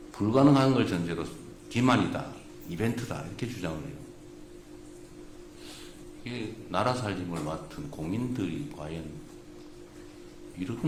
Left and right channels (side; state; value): both; identical; correlation 1.00